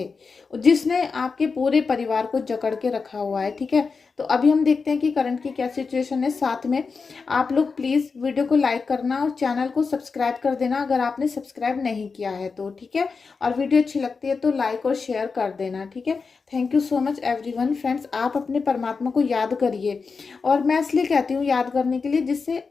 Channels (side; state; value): right; quieter; 4.8 dB